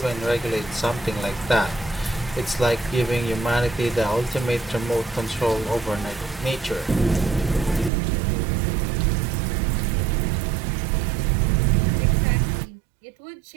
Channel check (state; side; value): drops out; left; at 7.9 s